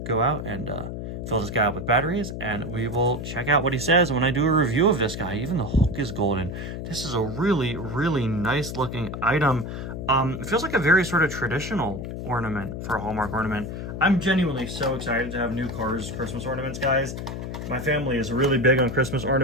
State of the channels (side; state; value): left; noise; hum, 6 dB below the sound